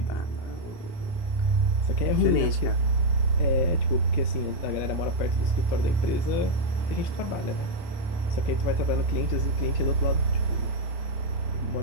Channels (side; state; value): right; late; 29 ms